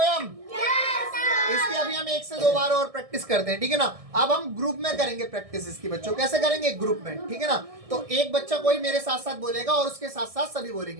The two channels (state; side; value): late; left; 1.6 ms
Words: इसकी अभी हम 1 से 2 बार और प्रैक्टिस करते हैं, ठीक है ना। अब हम ग्रुप में करेंगे प्रैक्टिस इसकी बच्चों। कैसे करेंगे? ग्रुप में, ठीक है ना। तो एक बच्चा कोई मेरे साथ साथ बोलेगा और उसके साथ साथ सभी